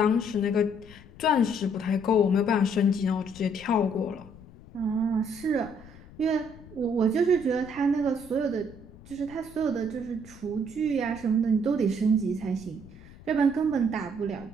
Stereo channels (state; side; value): noise; left; rumble, 20 dB below the sound